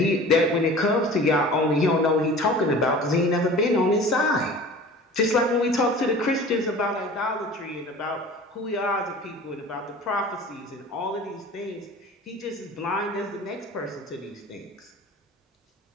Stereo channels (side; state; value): both; normal; correlation 0.41